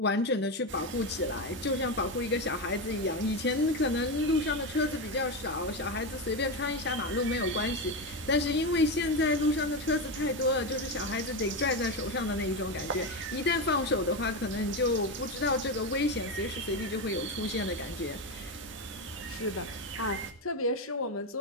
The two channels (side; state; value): both; normal; correlation 0.14